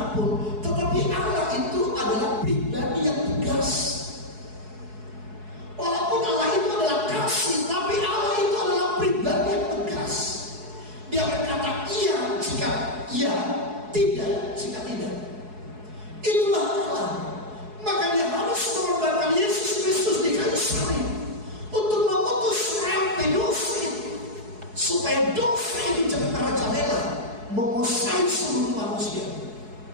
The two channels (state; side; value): late; left; 4.7 ms